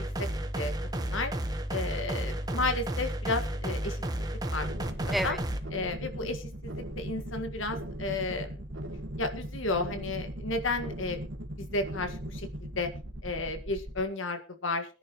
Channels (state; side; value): normal; both; correlation 0.33